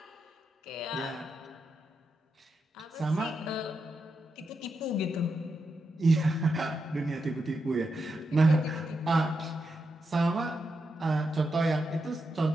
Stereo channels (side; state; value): both; normal; correlation 0.85